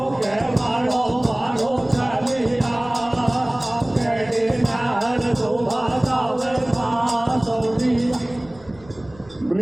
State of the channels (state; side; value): noise; right; rumble, 24 dB below the sound